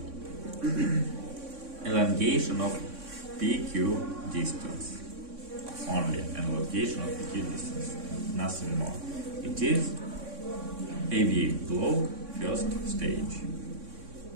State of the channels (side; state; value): left; late; 3.6 ms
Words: elongation of PQ distance. Only elongation of PQ distance, nothing more. It is AV block first stage.